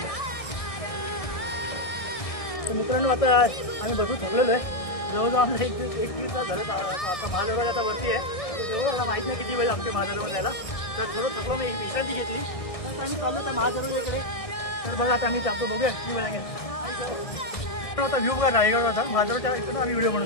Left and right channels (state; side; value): late; right; 1.6 ms